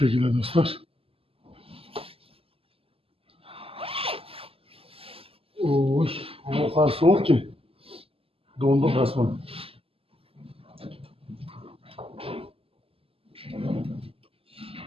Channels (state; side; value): late; left; 0.27 ms